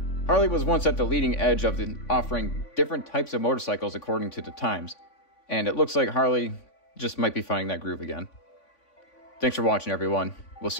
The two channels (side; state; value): right; late; 3.5 ms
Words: Harley was once at the leading edge of offering different types of motorcycles according to the times, and it looks like Harley just might be finding that groove again. Thanks for watching, everyone. We'll